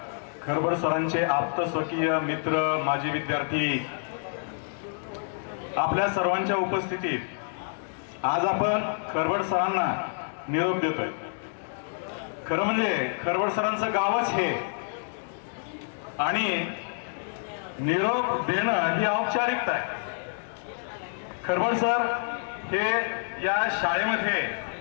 खरबड सरांचे आप्त स्वकीय मित्र, माजी विद्यार्थी, आपल्या सर्वांच्या उपस्थितीत आज आपण खरबड सरांना निरोप देतोय. खरं म्हणजे खरबड सरांचं गावच हे आणि निरोप देणं ही औपचारिकता आहे. खरबड सर हे या शाळेमध्ये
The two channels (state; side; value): silent; right; digital silence